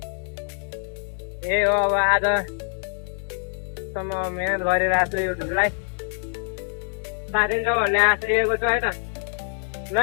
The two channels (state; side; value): silent; right; 62 dB below the other